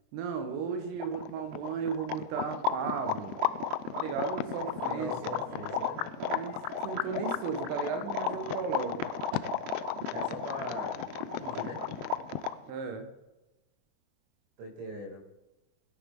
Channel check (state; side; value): late; left; 26 ms